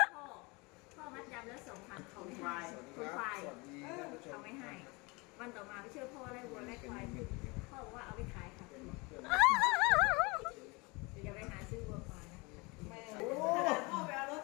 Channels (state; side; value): quieter; right; 26.7 dB